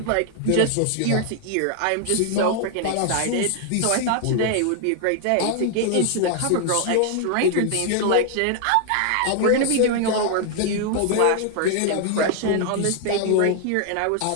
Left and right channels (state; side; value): different; both; correlation 0.00